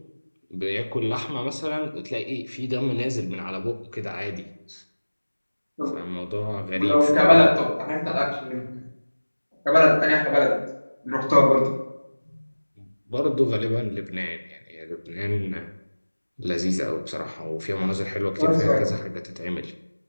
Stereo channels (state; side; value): inverted; both; correlation -1.00